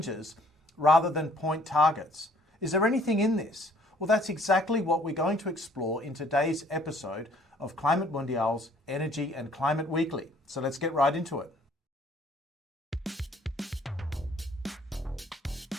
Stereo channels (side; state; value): both; normal; correlation 0.59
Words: rather than point targets. Is there anything in this? Well, that's exactly what we're going to explore in today's episode of Climate Mundial's Energy and Climate Weekly. So let's get right into it.